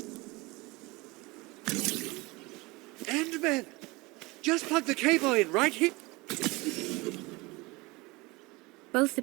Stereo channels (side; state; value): left; quieter; 23.8 dB